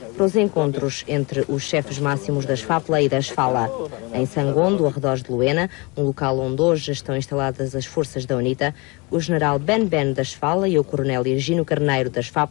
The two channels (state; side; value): quieter; right; 27.7 dB